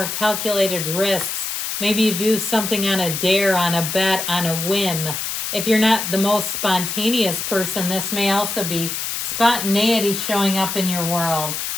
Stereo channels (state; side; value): noise; left; hiss, 3 dB below the sound